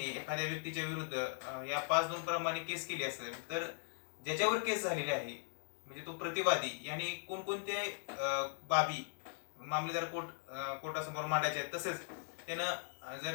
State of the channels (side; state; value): right; silent; digital silence